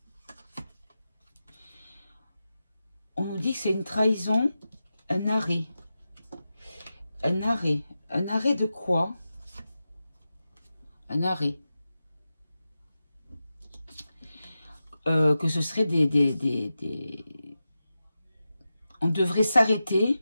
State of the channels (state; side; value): inverted; both; correlation -0.92